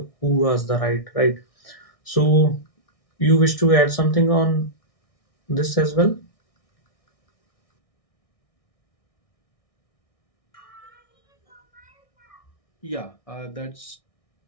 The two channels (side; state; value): right; late; 1.6 ms